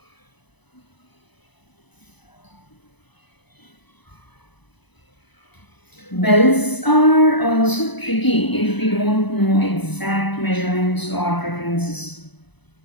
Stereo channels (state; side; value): late; right; 1.0 ms